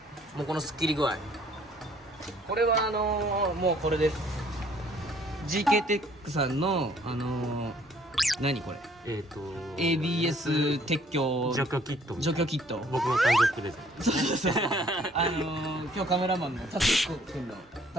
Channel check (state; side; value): normal; both; correlation 0.60